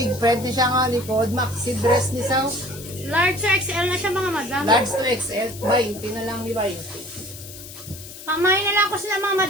friend ni siya nga likod. Maxi dress ni sa Large to XL na siya mga madam. large to XL. 20 na lang ni 20. Pamay na lang ko sila mga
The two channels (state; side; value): noise; left; hiss, 14 dB below the sound